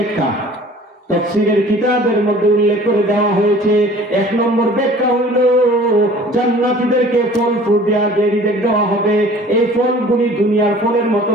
তাফসীরের কিতাবের মধ্যে উল্লেখ করে দেওয়া হয়েছে, এক নম্বর ব্যাখ্যা হইল জান্নাতীদেরকে ফল ফ্রুট দেওয়া হবে, এই ফলগুলি দুনিয়ার ফলের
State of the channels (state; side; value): normal; both; correlation 0.48